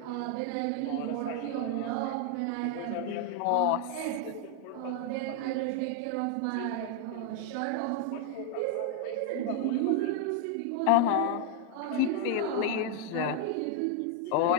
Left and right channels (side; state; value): both; different; correlation 0.00